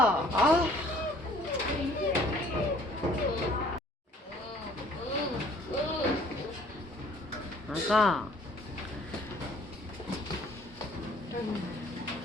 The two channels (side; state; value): both; normal; correlation 0.57